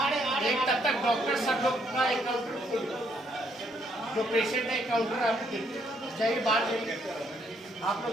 एक तब तक डॉक्टर सब लोग का काउंटर खोल दो, जो पेशेंट है काउंटर आपको देखिए, चाहिए बाहर जाइए, आप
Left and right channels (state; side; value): normal; both; correlation 0.71